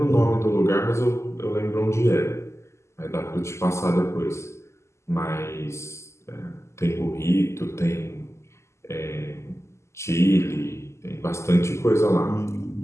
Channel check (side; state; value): right; late; 0.13 ms